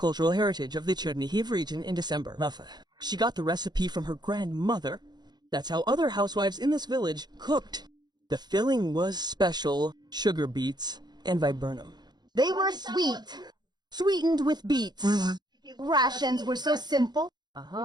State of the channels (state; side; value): late; left; 0.20 ms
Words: heritage of the Чернігів region in December. She got the recipe from her grandmother. That's how other housewives in this village cooked. The filling was special, sugar beets, and viburnum. They were sweet. Sweetened with beets. Rations were so simple